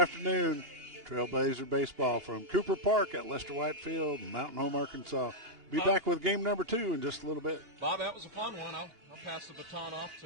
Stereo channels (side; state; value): left; late; 2.8 ms